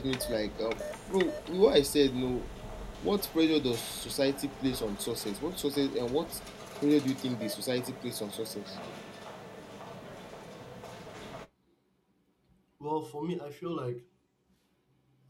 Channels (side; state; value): both; identical; correlation 1.00